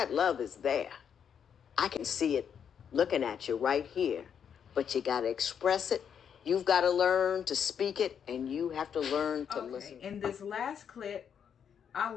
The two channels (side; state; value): right; quieter; 7.9 dB